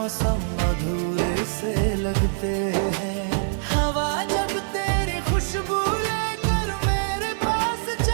अधूरे से लगते हैं। हवा जब तेरी खुशबू लेकर मेरे पास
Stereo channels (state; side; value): silent; left; digital silence